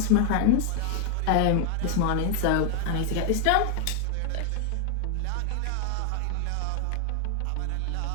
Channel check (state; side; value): different; both; correlation 0.00